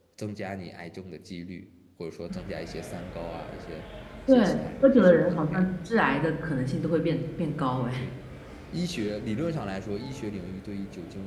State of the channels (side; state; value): both; identical; correlation 1.00